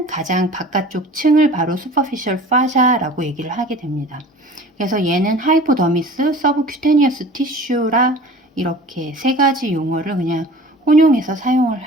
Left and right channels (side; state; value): both; normal; correlation 0.43